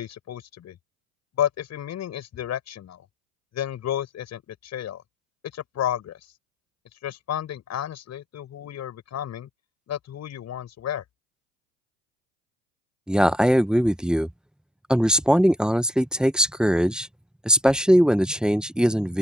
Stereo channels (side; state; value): both; normal; correlation 0.71